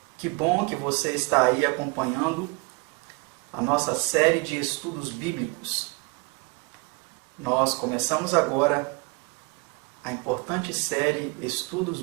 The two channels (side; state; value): left; quieter; 28.4 dB